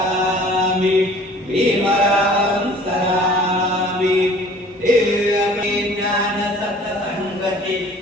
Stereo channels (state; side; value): normal; both; correlation 0.50